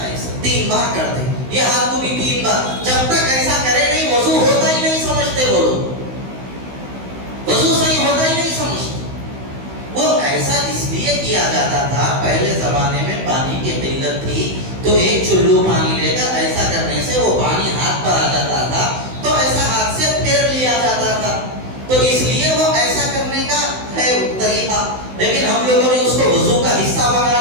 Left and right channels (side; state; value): left; late; 16 ms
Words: ایسا 3 بار کرتے ہیں، یہ ہاتھ کو بھی 3 بار، جب تک ایسا کرے نہیں وضو ہوتا ہی نہیں سمجھتے وہ لوگ، وضو صحیح ہوتا ہی نہیں سمجھتے۔ کیا جاتا تھا، پہلے زمانے میں پانی کی قلت تھی تو ایک چلو پانی لے کر ایسا کرنے سے وہ پانی ہاتھ پر آ جاتا تھا، تو ایسا ہاتھ سے پھیر لیا جاتا تھا، تو اس لیے وہ ایسا کرنے کا ہے طریقہ۔ لیکن ہم لوگوں نے اس کو وضو کا حصہ بنا